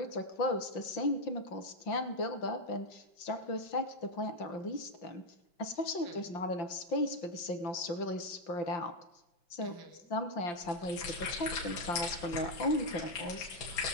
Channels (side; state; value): right; late; 5.8 ms